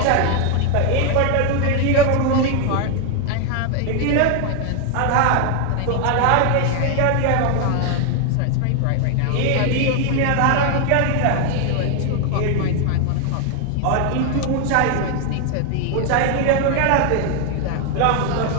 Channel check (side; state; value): both; different; correlation 0.00